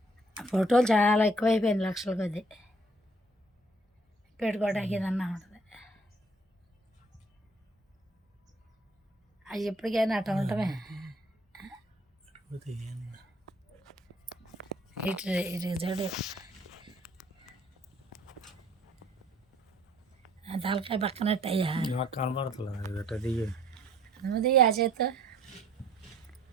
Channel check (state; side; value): normal; both; correlation 0.59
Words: ఫోటోలు చాలా ఎక్కువైపోయింది, లక్షల కొద్ది పెట్టుకోవడానికి ఏదన్నా ఉంటుంది. అవి ఎప్పటికైనా అట్లా ఉండటమే. ఇటు ఇటు చూడు, తలకాయ పక్కనట్టు అయ్యా నాకు కనబడుతుంది. నువ్వుది ఆ చేత